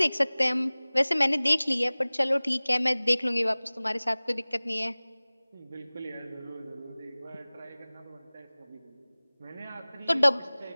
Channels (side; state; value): both; inverted; correlation -1.00